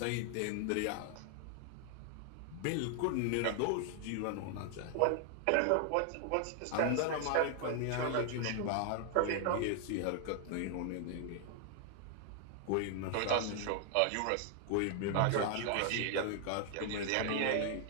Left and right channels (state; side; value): different; both; correlation 0.00